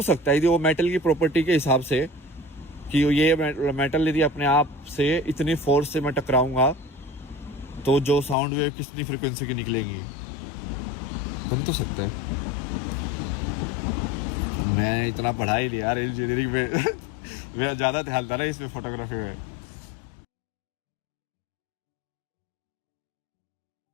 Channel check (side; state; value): right; drops out; at 8.3 s